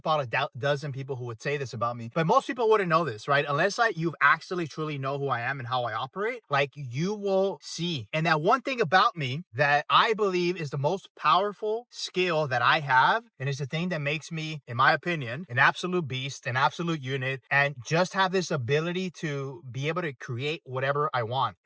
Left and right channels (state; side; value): identical; both; correlation 1.00